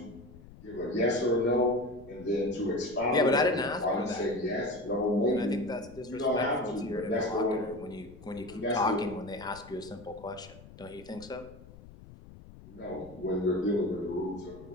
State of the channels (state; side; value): noise; left; rumble, 19 dB below the sound